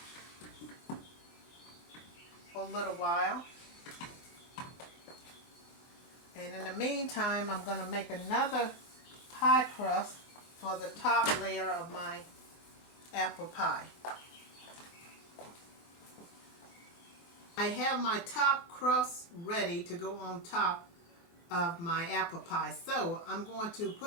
for a little while. And in the meantime, I'm going to make another pie crust for the top layer of my apple pie. I have my top crust ready to go on top of my apple pie. So I'm going to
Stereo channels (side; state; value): right; late; 23 ms